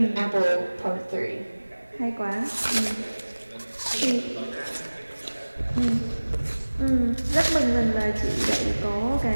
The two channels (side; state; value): both; inverted; correlation -1.00